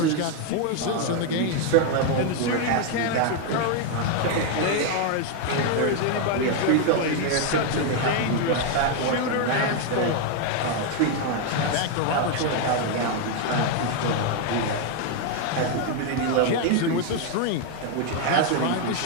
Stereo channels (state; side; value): different; both; correlation 0.01